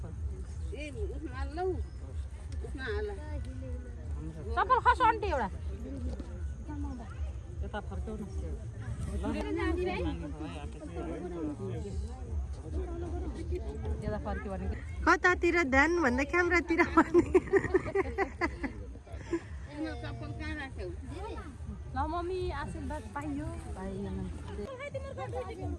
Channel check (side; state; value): both; identical; correlation 1.00